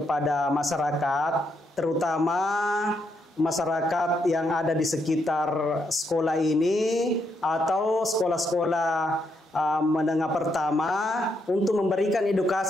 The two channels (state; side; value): normal; both; correlation 0.78